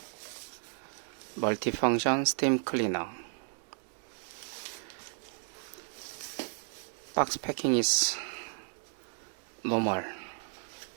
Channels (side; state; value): left; silent; 55 dB below the other